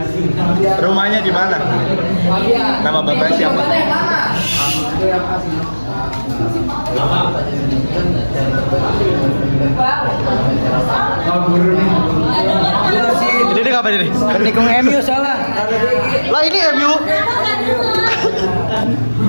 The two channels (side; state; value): both; inverted; correlation -1.00